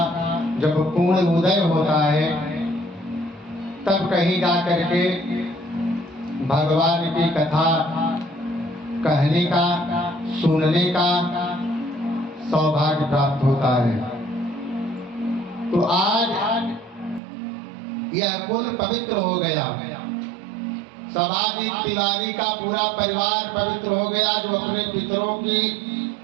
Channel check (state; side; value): drops out; left; at 17.2 s